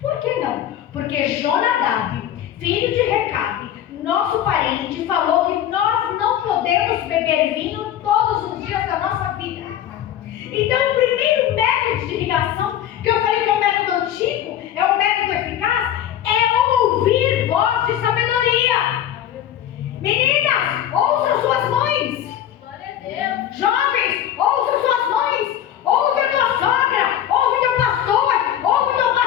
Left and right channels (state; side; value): quieter; right; 11.0 dB